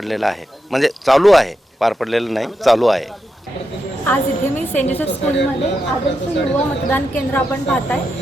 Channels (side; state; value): both; normal; correlation 0.86